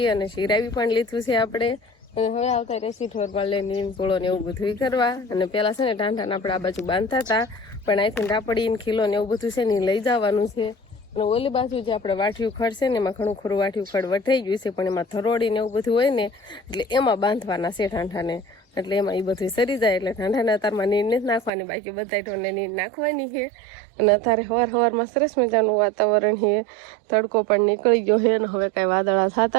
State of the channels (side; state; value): left; drops out; at 21.5 s